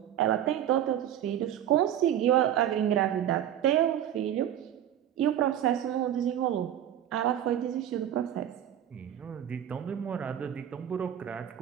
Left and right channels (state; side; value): quieter; left; 10.8 dB